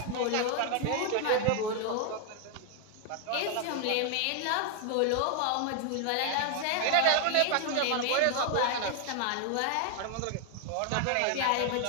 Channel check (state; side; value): different; both; correlation 0.00